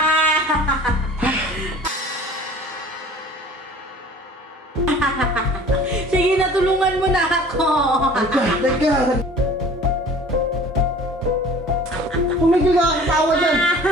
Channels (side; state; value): both; normal; correlation 0.46